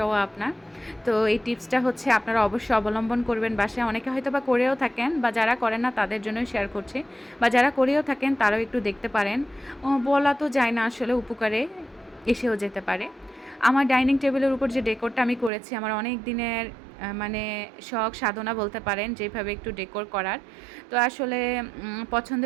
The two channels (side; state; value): left; drops out; at 15.5 s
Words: আপনার। তো এই টিপসটা হচ্ছে আপনারা অবশ্যই অবলম্বন করবেন বাসায়। অনেকে হয়তো বা করেও থাকেন, বা যারা করেন না তাদের জন্যই শেয়ার করছি, বা যারা করেও থাকেন তারাও একটু দেখতে পারেন। বলা তো যায় না, আসলে উপকারে এসেও যেতে পারে। আমার ডাইনিং টেবিলের উপর যে ডেকোরটা আমি করেছি, আমার অনেক দিনের মানে শখ সাধনা বলতে পারেন, যেভাবে একটু ডেকোর করার। তো আসলে